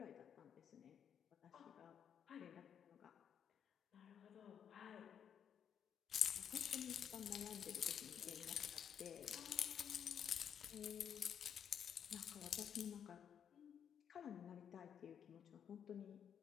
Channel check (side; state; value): right; quieter; 8.3 dB